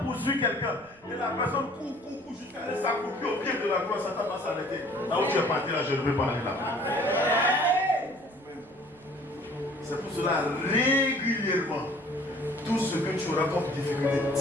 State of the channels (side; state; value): right; noise; rumble, 29 dB below the sound